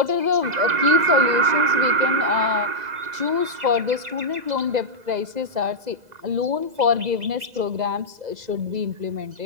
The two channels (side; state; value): left; late; 2.0 ms